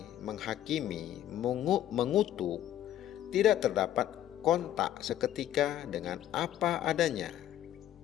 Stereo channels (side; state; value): right; quieter; 12.1 dB